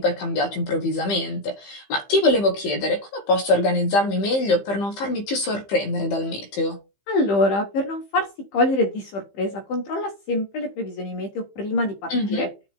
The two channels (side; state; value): right; late; 15 ms